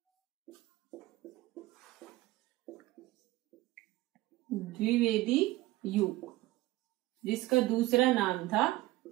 द्विवेदी युग, जिसका दूसरा नाम था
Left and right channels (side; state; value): left; quieter; 18.1 dB